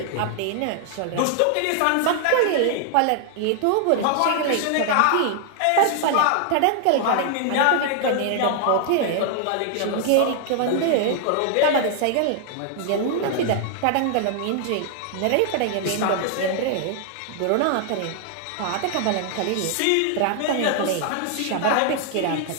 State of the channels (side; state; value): both; different; correlation 0.00